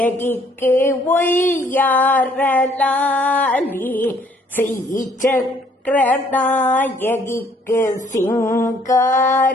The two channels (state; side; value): normal; both; correlation 0.64